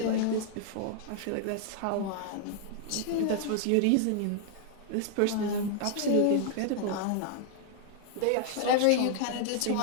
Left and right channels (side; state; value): both; different; correlation 0.00